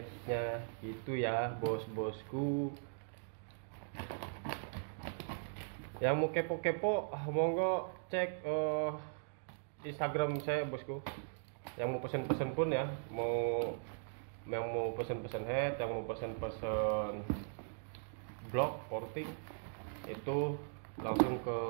gitu ya bos-bosku. Yang mau kepo-kepo monggo cek Instagram saya bosku. Yang mau pesen-pesen pun ya, yang mau pesen-pesen head, yang mau pesen-pesen blok porting, itu langsung ke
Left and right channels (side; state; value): left; silent; digital silence